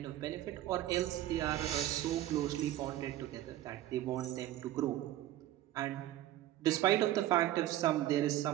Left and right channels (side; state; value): left; quieter; 13.9 dB